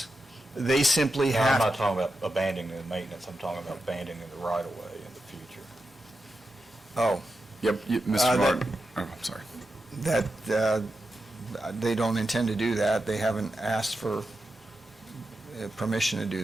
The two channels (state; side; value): normal; both; correlation 0.89